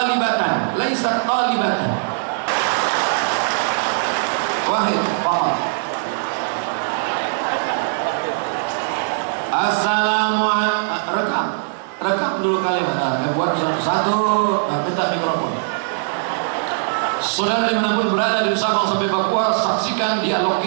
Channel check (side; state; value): left; silent; digital silence